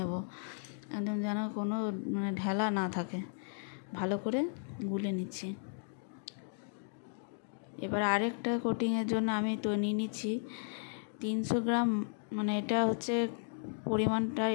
একদম যেন কোনো ঢেলা না থাকে, ভালো করে গুলে নিচ্ছি। এবার আরেকটা কোটিংয়ের জন্য আমি তো নিয়ে নিচ্ছি 300 গ্রাম, এটা হচ্ছে পরিমাণটা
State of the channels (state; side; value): silent; right; digital silence